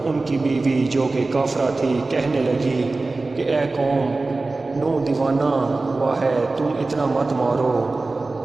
ان کی بیوی جو کہ کافرہ تھی کہنے لگی کہ اے قوم، نوح دیوانہ ہوا ہے، تم اتنا مت مارو،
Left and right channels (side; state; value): left; quieter; 3.4 dB